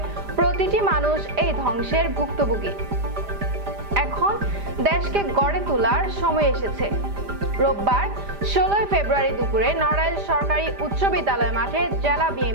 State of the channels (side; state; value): left; late; 5.0 ms